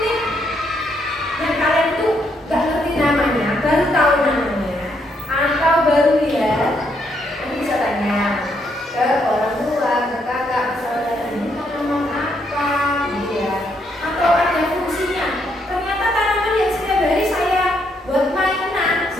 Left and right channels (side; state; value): both; normal; correlation 0.74